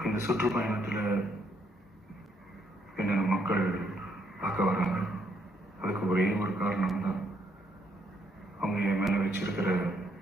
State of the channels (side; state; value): both; normal; correlation 0.72